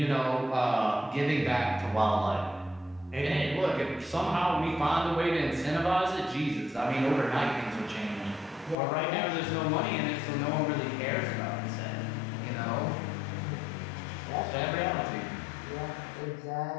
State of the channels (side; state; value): right; drops out; at 8.8 s